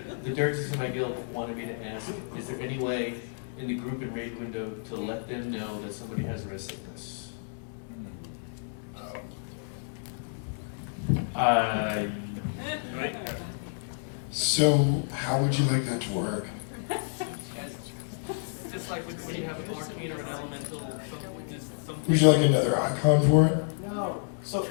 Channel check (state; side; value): silent; right; digital silence